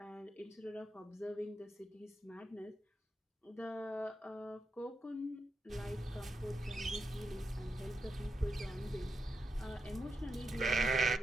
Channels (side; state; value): both; normal; correlation 0.86